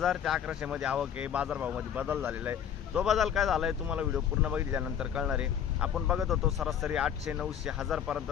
ते 1100 मध्ये आवक आहे। बाजार भाव मध्ये बदल झालेला आहे। तो बदल काय झालाय तुम्हाला व्हिडिओ पूर्ण बघितल्यानंतर कळणार आहे। आपण बघत होतो सरासरी 800, 900, 1000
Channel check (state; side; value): quieter; right; 8.9 dB